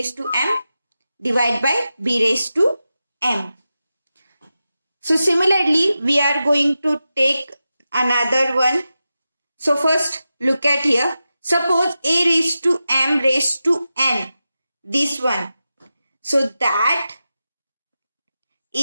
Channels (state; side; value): inverted; both; correlation -0.92